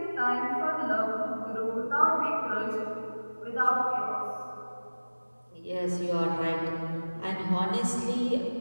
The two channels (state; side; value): inverted; both; correlation -1.00